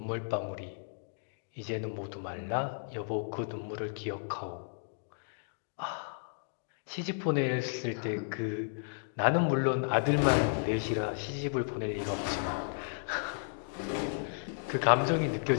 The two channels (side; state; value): right; silent; digital silence